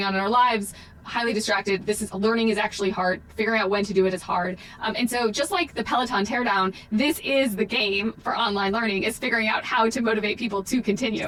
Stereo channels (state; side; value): identical; both; correlation 1.00